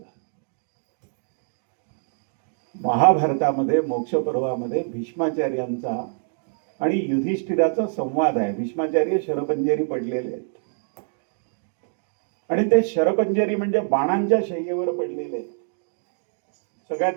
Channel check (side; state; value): left; silent; 62 dB below the other